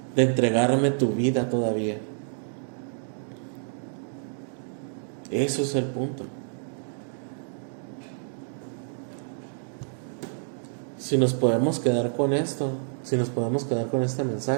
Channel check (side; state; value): left; silent; digital silence